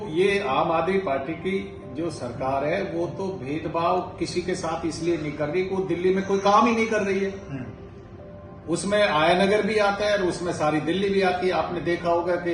ये आम आदमी पार्टी की जो सरकार है वो तो भेदभाव किसी के साथ इसलिए नहीं कर रही, वो दिल्ली में कोई काम ही नहीं कर रही है। उसमें आयानगर भी आता है और उसमें सारी दिल्ली भी आती है। आपने देखा होगा कि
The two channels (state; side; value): identical; both; correlation 1.00